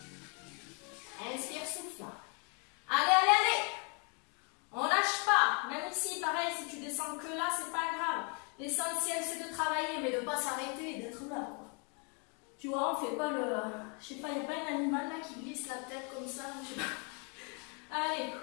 Inspire, souffle. Allez, allez, allez. On lâche pas. Même ici, pareil, si tu descends que là, c'est pas grave. L'essentiel, c'est de travailler, mais de ne pas s'arrêter et d'être là. Quoi. Tu vois, on fait pas le... Je sais pas, il n'y a pas un animal là qui glisse la tête comme ça. Je sais pas. Allez.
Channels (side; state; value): right; quieter; 36.2 dB